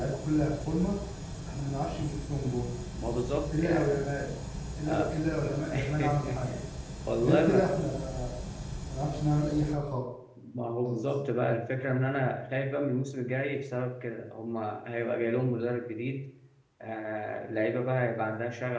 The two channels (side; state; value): both; identical; correlation 1.00